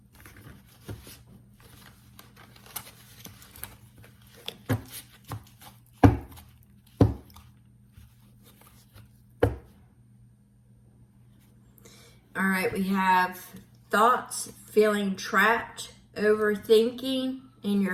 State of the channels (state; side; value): identical; both; correlation 1.00